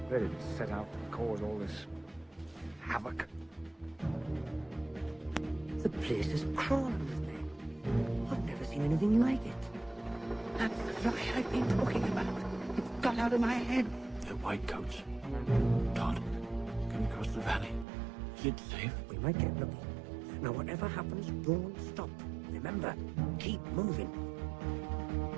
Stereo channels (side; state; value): left; drops out; at 17.9 s